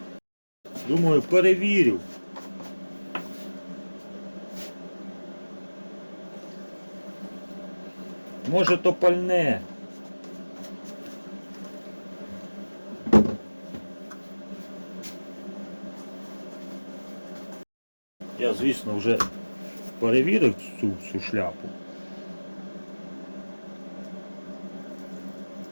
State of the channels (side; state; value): both; inverted; correlation -1.00